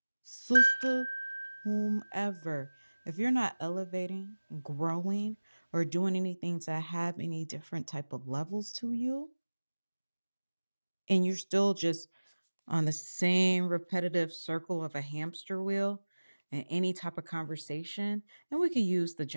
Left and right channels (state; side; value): inverted; both; correlation -1.00